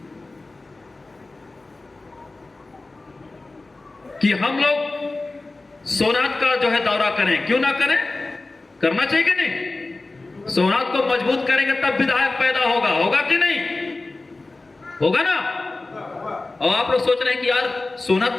कि हम लोग सोनात का जो है दौरा करें। क्यों ना करें, करना चाहिए कि नहीं? सोनात को मजबूत करेंगे तब विधायक पैदा होगा कि नहीं? होगा ना? और आप लोग सोच रहे हैं कि यार सोनात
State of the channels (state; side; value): quieter; right; 3.2 dB